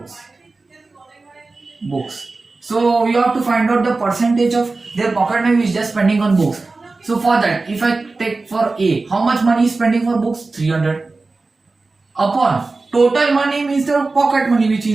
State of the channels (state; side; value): quieter; left; 3.6 dB